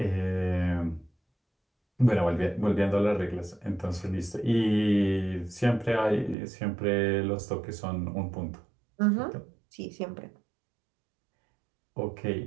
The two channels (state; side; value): drops out; left; at 6.4 s